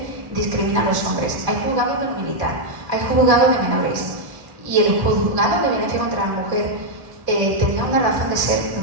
discrimina a los hombres. Hay juzgados del militar, hay juzgados de menores, y el juzgado de violencia contra la mujer tenía una razón de ser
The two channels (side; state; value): left; late; 1.1 ms